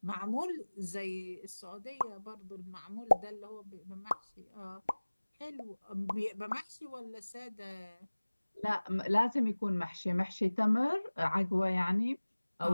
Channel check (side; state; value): both; inverted; correlation -1.00